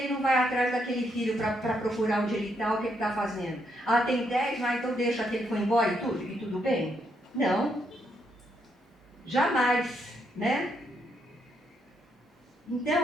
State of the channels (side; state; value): both; normal; correlation 0.77